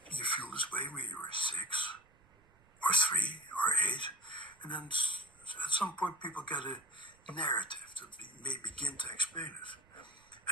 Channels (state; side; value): noise; right; rumble, 30 dB below the sound